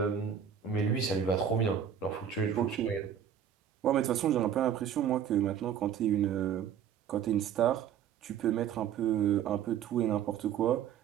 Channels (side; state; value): left; quieter; 8.7 dB